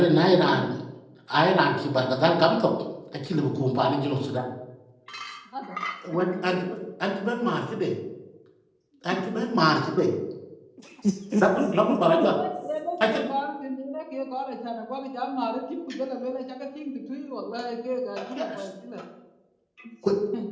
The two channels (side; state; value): both; identical; correlation 1.00